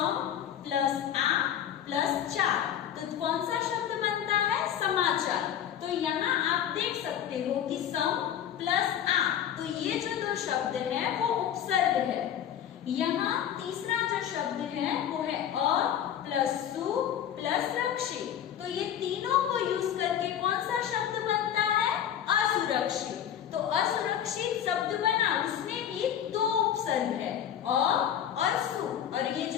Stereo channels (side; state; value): right; quieter; 9.9 dB